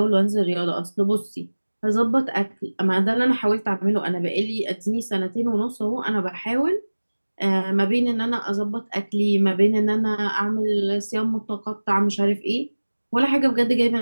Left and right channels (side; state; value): both; inverted; correlation -1.00